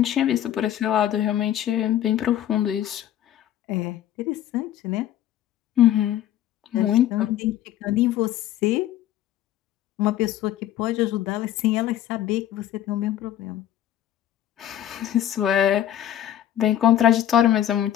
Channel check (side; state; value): right; quieter; 11.8 dB